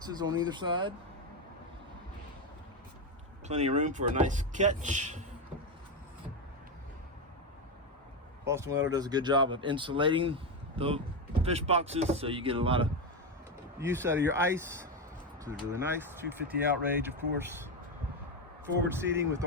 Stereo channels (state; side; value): normal; both; correlation 0.10